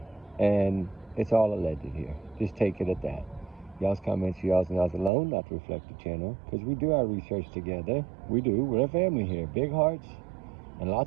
And it's all alleged here. Just take it at that. Y'all's comments, y'all's alone, not to reflect the channel, because we do our research together. We do. We're a family here. Big hearts and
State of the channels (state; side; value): drops out; left; at 5.1 s